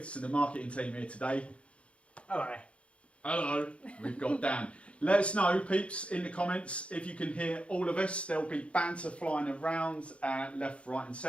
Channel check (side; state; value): right; late; 0.061 ms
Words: of the marketing team here today. Hello. Hello. We've got Dan. Let us know, peeps, in the comments if you can hear all of us. There'll be banter flying around left, right and